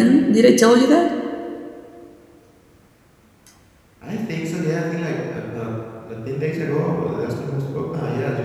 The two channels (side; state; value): both; identical; correlation 1.00